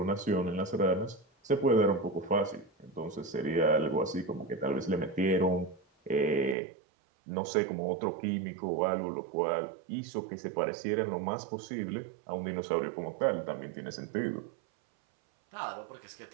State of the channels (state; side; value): drops out; left; at 6.6 s